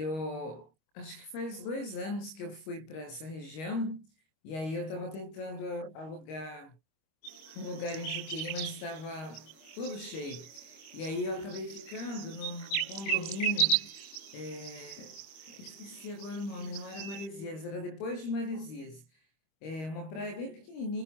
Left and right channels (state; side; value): late; right; 25 ms